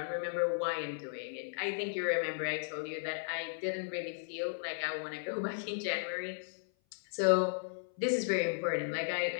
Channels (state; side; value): silent; right; 54 dB below the other